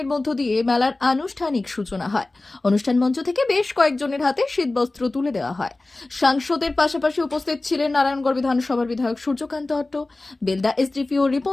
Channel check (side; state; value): right; quieter; 3.0 dB